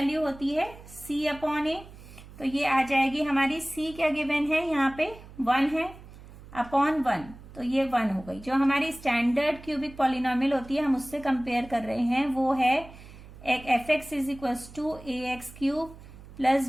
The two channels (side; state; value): right; noise; hum, 18 dB below the sound